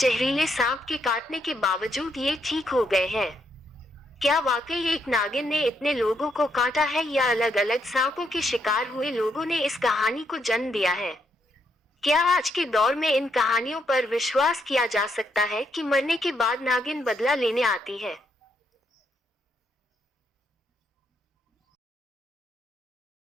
सांप के काटने के बावजूद ये ठीक हो गए हैं। क्या वाकई एक नागिन ने इतने लोगों को काटा है, या अलग अलग सांपों के शिकार हुए लोगों ने इस कहानी को जन्म दिया है? क्या आज के दौर में इन कहानियों पर विश्वास किया जा सकता है कि मरने के बाद नागिन बदला लेने आती है?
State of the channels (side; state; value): both; normal; correlation 0.77